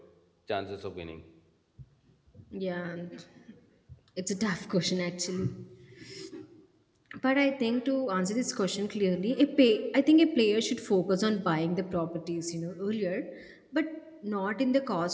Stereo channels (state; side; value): identical; both; correlation 1.00